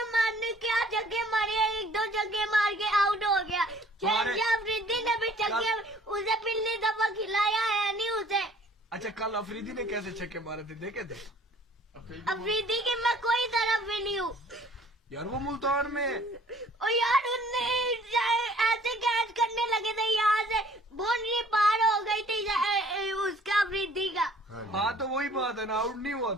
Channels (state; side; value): normal; both; correlation 0.55